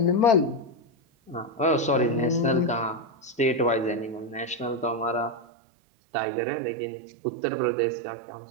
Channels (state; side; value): drops out; left; at 5.5 s